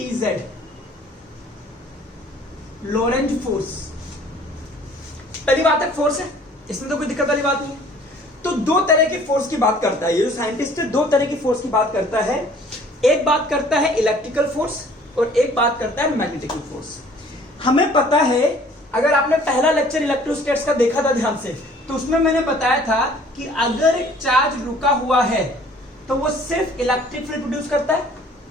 Lorentz force. पहली बात है फोर्स है, इसमें तो कोई दिक्कत वाली बात नहीं है। तो दो तरह की फोर्स की बात करता है ये जो साइंटिस्ट है, दो तरह की फोर्स की बात करता है। एक बात करता है इलेक्ट्रिकल फोर्स और एक बात करता है मैग्नेटिकल फोर्स। हमें पता है, अगर आपने पहला लेक्चर इलेक्ट्रोस्टैटिक्स का देखा था ध्यान से, तो उसमें मैंने बताया था कि अगर एक चार्ज रुका हुआ है तो वो सिर्फ इलेक्ट्रिक फील्ड प्रोड्यूस करता है,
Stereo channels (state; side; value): normal; both; correlation 0.54